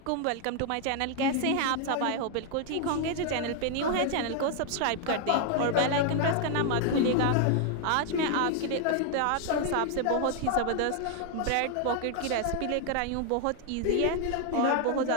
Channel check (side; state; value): both; different; correlation 0.00